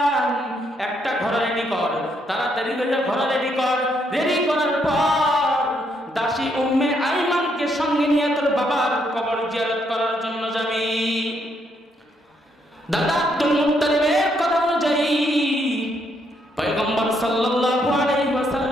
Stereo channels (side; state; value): both; normal; correlation 0.74